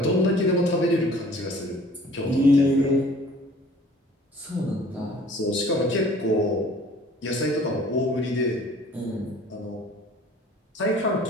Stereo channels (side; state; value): both; normal; correlation 0.51